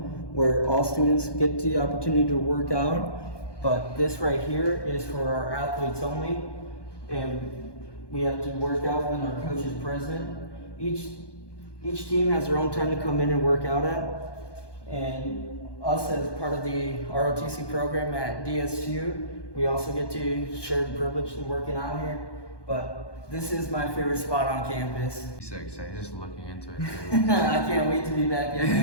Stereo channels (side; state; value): right; late; 1.2 ms